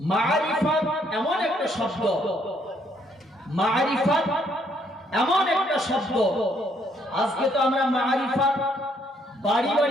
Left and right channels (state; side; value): normal; both; correlation 0.69